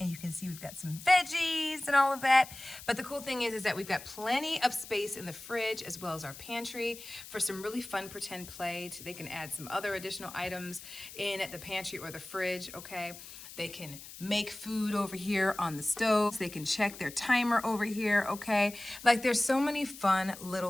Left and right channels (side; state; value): left; noise; hiss, 15 dB below the sound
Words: you can see we've got some veggies and all of that. But the cool thing is that we've got plenty of space in the fridge as well as our pantry for some really fun pretend play. They can add some other additional items in the pantry or the fridge, okay? They can make food over here on the stove. They can check their timer over here, okay? Like there's so many fun